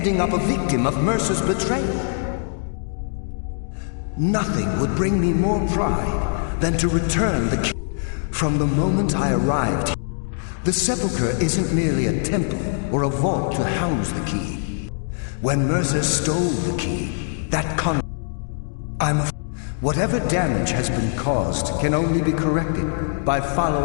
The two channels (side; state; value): right; silent; 62 dB below the other